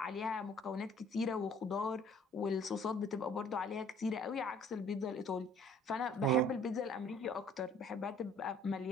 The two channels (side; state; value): both; normal; correlation 0.55